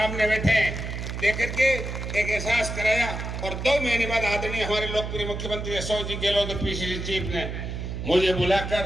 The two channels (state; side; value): noise; right; hum, 5 dB below the sound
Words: बैठे हैं देकर के एक एहसास कराया। और 2 महीने बाद आदरणीय हमारे लोकप्रिय मुख्यमंत्री अशोक जी गहलोत पीसीसी चीफ ने मुझे